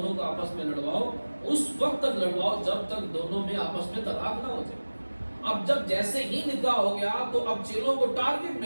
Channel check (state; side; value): inverted; both; correlation -1.00